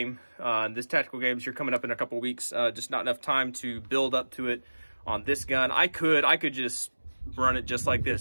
this tactical games here coming up in a couple weeks. Just not enough time to build up to it on this gun. I could just run it just like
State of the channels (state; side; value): inverted; both; correlation -1.00